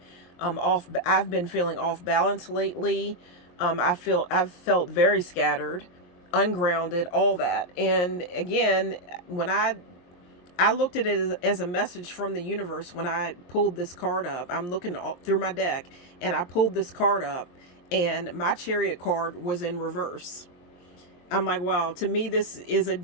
off. I've been feeling off balance lately. I've felt very scattered, ungrounded, all that. And again, when I looked at it as a message from the universe when I pulled this card up. I'm looking through my deck and I pulled this card up and my Chariot card was in reverse. I'm like, wow, to me, this is a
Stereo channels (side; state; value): right; late; 23 ms